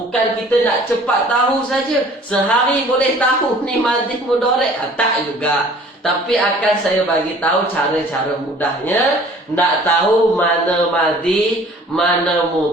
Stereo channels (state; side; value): normal; both; correlation 0.51